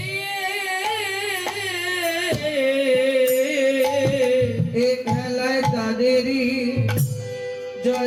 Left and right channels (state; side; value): identical; both; correlation 1.00